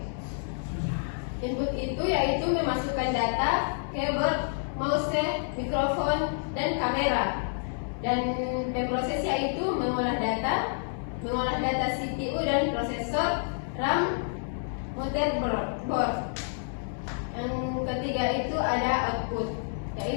Input itu yaitu memasukkan data, keyboard, mouse, mikrofon, dan kamera. Dan pemroses yaitu mengolah data CPU dan prosesor, RAM, motherboard. Yang ketiga itu ada output,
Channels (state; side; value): silent; right; digital silence